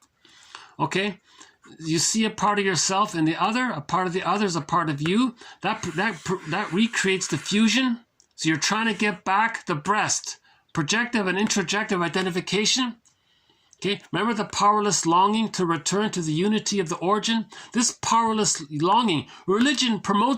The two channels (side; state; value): both; identical; correlation 1.00